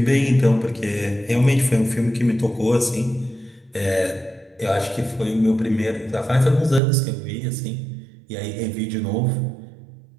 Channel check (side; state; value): left; drops out; at 6.8 s